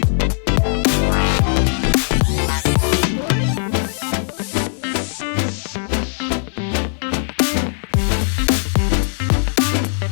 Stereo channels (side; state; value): right; silent; 58 dB below the other